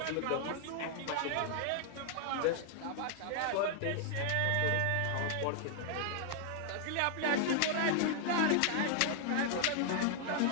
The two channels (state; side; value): different; both; correlation 0.00